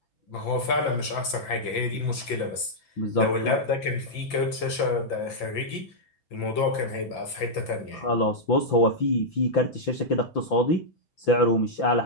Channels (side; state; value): right; late; 5.9 ms